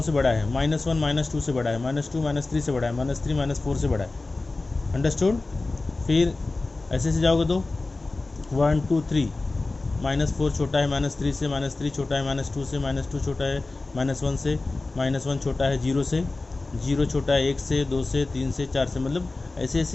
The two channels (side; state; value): right; quieter; 3.3 dB